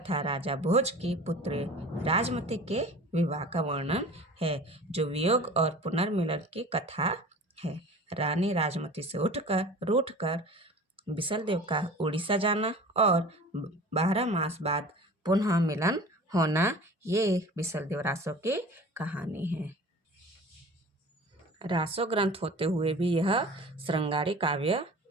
राजा भोज की पुत्री राजमती के विवाह का वर्णन है, जो वियोग और पुनर्मिलन की कथा है। रानी राजमती से रूठकर बिसलदेव का उड़ीसा जाना और 12 मास बाद पुनः मिलन होना, ये बिसलदेव रासो की कहानी है। रासो ग्रंथ होते हुए भी यह श्रृंगारी काव्य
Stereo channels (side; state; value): both; normal; correlation 0.41